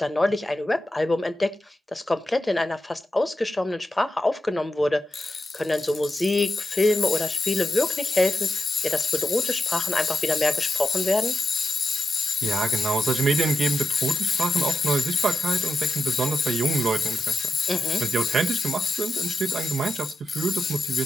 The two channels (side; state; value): both; normal; correlation 0.87